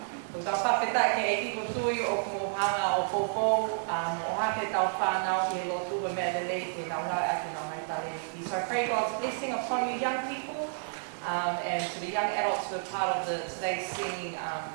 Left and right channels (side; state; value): left; silent; digital silence